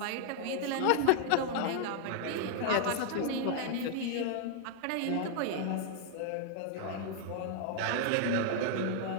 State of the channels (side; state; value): both; different; correlation 0.00